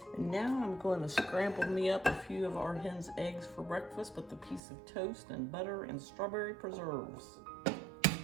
And now I'm going to scramble me up a few of our hen's eggs for breakfast with a piece of toast and butter and strawberry preserves.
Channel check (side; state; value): left; drops out; at 4.6 s